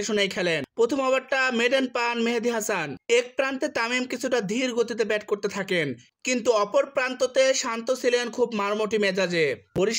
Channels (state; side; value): identical; both; correlation 1.00